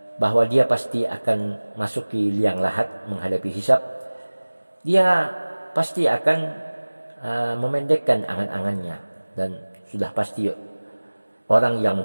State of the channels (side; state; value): both; inverted; correlation -1.00